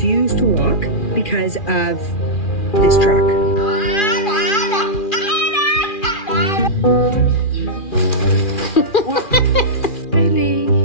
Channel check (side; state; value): right; late; 2.4 ms